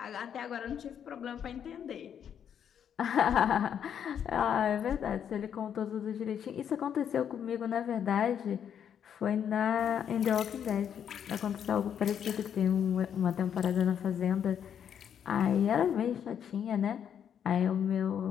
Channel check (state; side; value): quieter; right; 8.6 dB